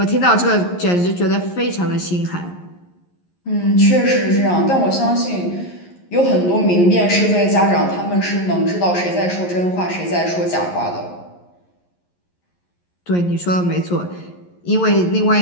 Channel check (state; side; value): late; right; 11 ms